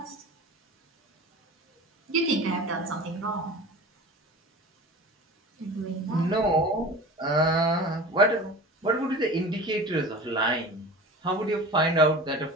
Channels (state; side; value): normal; both; correlation 0.36